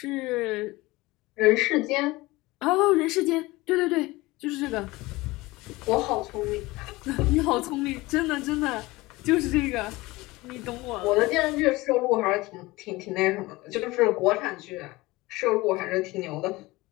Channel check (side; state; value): right; quieter; 20.8 dB